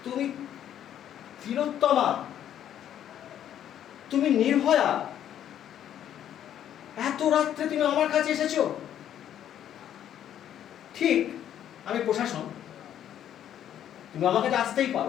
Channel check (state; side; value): quieter; right; 10.5 dB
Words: তুমি তিলোত্তমা, তুমি নির্ভয়া, এত রাত্রে তুমি আমার কাছে এসেছো? ঠিক, আমি প্রশাসন, তুমি আমার কাছে আসতেই